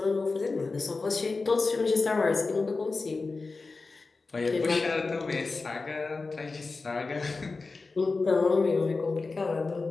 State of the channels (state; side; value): quieter; right; 3.9 dB